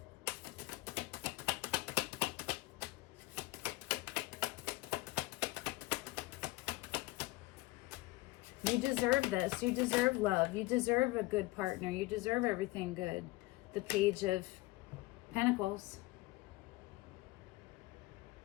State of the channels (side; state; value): right; quieter; 20.2 dB